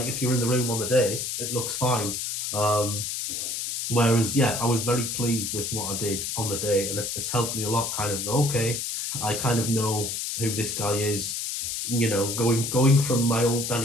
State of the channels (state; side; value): noise; left; hiss, 3 dB below the sound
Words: if you're in the room on the day, it looks fine. Whereas, yeah, I was very pleased with what I did on the day, and it's helped me a lot. Kind of okay, I kind of know who this guy is. Going from my old